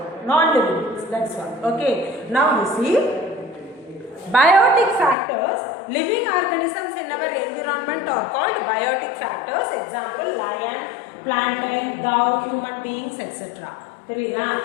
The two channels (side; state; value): right; drops out; at 5.2 s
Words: non-living things. That's all. Okay. Now you see biotic factors, living organisms in our environment are called biotic factors. Example, lion, plantain, dog, human beings, etc. Therida,